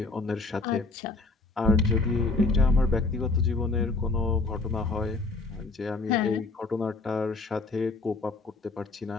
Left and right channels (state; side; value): quieter; right; 3.5 dB